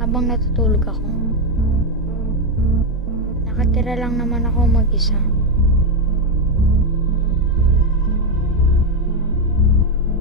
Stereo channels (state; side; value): normal; both; correlation 0.05